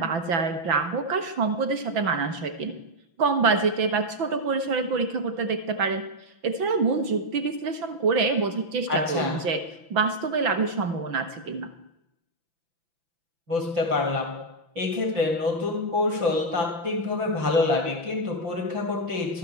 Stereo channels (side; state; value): left; late; 6.0 ms